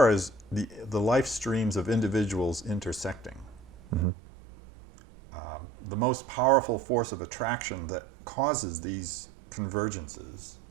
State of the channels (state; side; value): drops out; left; at 4.0 s